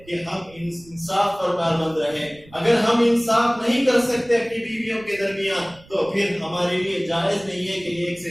کہ ہم انصاف پر کاربند رہیں. اگر ہم انصاف نہیں کر سکتے اپنی بیویوں کے درمیان تو پھر ہمارے لیے جائز نہیں ہے کہ ایک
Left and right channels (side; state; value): right; noise; rumble, 24 dB below the sound